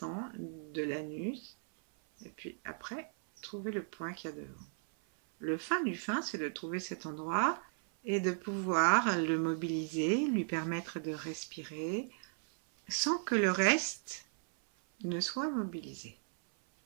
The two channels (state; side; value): silent; left; 54 dB below the other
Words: de l'anus. Et puis après, trouver le point qu'il y a devant. Le fin du fin, c'est de trouver cet endroit et de pouvoir le mobiliser, lui permettre de respirer, sans que le reste ne soit mobilisé.